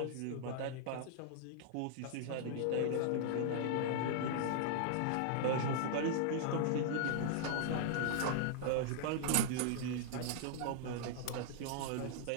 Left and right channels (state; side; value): different; both; correlation -0.01